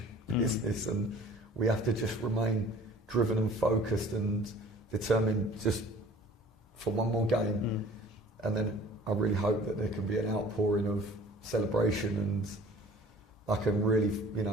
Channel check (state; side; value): normal; both; correlation 0.49